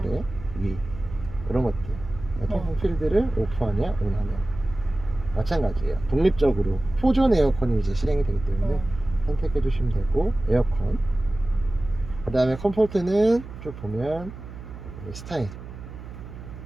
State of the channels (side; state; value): right; noise; hum, 13 dB below the sound